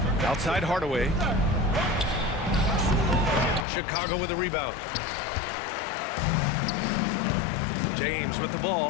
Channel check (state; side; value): drops out; right; at 3.7 s